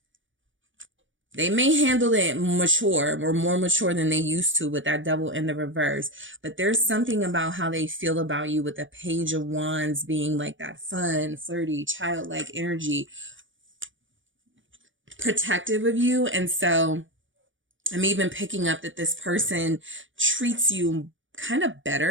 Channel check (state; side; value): late; left; 0.56 ms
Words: They may handle it mature or more mature than they used to with that Devil in the reverse. But there's something about how they feel about you with the Page of Wands being like that fun, flirty, childlike energy, protective of you. And so I'm even picking up that this person treats you kind of